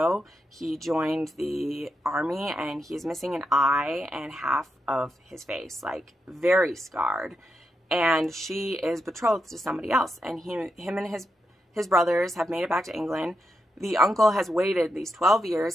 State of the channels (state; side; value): normal; both; correlation 0.85